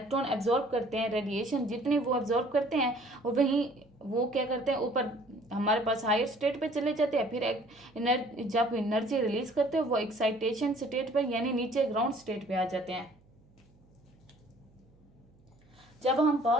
एब्जॉर्ब करते हैं रेडिएशन, जितने वो एब्जॉर्ब करते हैं और वहीं वो क्या करते हैं ऊपर हमारे पास हायर स्टेट पे चले जाते हैं, फिर जब एनर्जी रिलीज करते हैं वो एक्साइटेशन स्टेट पे यानी नीचे ग्राउंड स्टेट पे आ जाते हैं। जब हम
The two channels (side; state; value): right; noise; hum, 30 dB below the sound